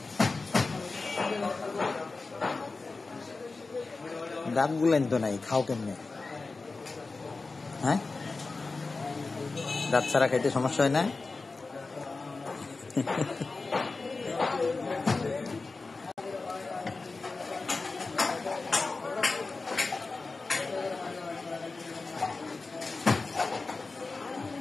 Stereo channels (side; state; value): right; quieter; 3.8 dB